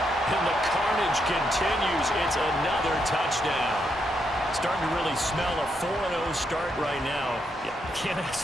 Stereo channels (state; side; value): normal; both; correlation 0.79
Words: And the carnage continues. It's another touchdown. Starting to really smell a 4-0 start right now. You can't